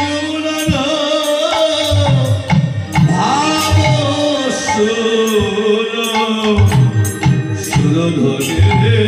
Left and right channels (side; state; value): both; identical; correlation 1.00